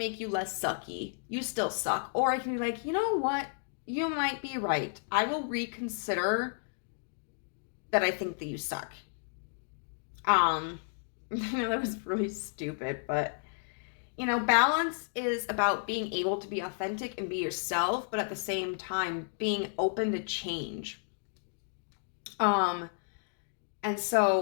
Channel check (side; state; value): right; silent; digital silence